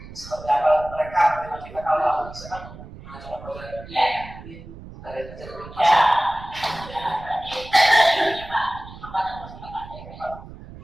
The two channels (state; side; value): noise; right; rumble, 15 dB below the sound